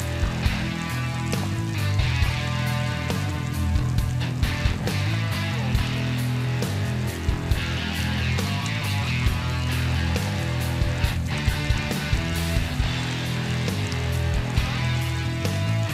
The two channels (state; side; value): identical; both; correlation 1.00